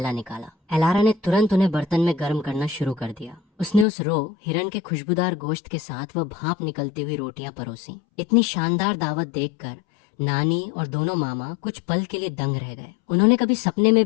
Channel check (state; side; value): drops out; right; at 3.9 s